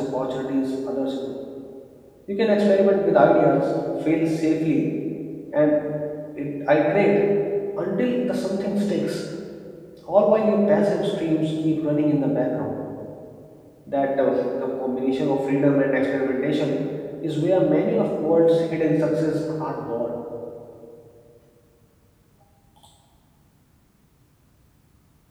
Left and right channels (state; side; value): identical; both; correlation 1.00